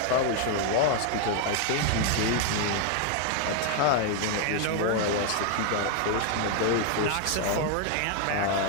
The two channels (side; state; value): both; different; correlation 0.01